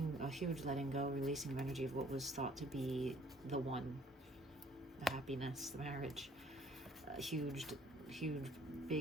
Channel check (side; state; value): both; normal; correlation 0.58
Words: a huge letting go, releasing of energy of what was thought to be the one, the happiness, the marriage. Huge,